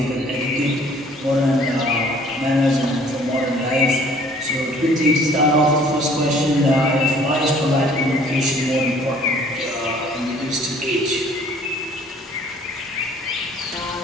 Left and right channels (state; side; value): normal; both; correlation 0.55